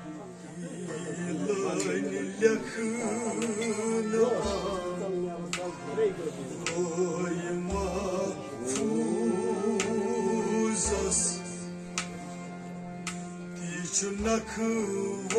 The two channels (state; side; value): identical; both; correlation 1.00